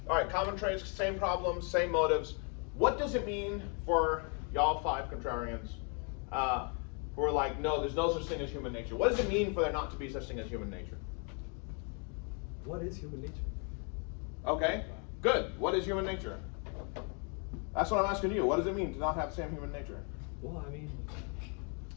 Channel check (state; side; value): quieter; right; 38.1 dB